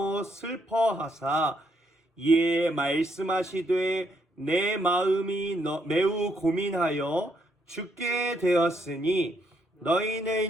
슬퍼하사 이에 말씀하시되 내 마음이 매우 고민하여 죽게 되었으니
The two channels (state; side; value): normal; both; correlation 0.74